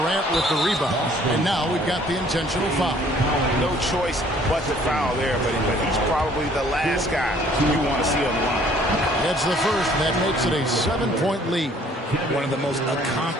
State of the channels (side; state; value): both; normal; correlation 0.58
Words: with the rebound. And now we've got the intentional foul. No choice but to foul there, but he's probably the last guy you want to see on the line. That's the first. That makes it a 7-point lead. One of the most